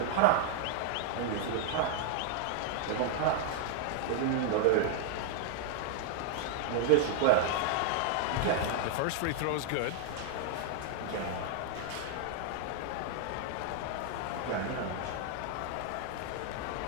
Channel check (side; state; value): both; different; correlation -0.01